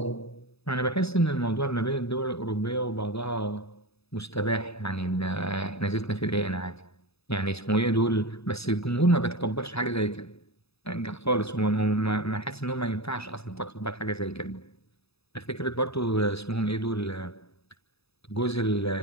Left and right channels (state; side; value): late; right; 0.78 ms